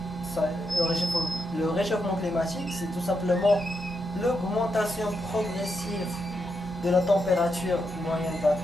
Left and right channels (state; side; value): normal; both; correlation 0.83